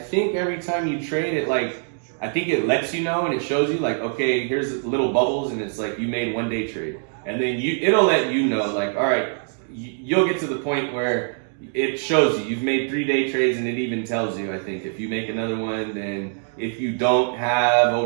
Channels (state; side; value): silent; left; 58 dB below the other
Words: time you trade it, I think it lets you know and it shows you like, okay, here's little bubbles and it's like you made 1 day trade. And then it'll let you know, like, all right, you'll get to the point where it shows you you've made 3 day trades, and it even tells you, I think, if you make another one, then if you don't have